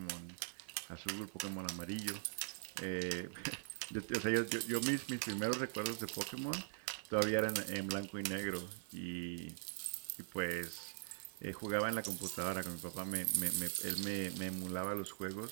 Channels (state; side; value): silent; left; digital silence